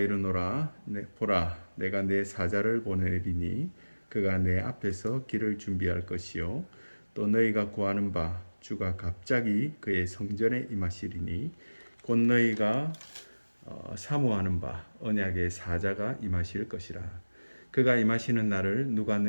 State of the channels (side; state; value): both; inverted; correlation -1.00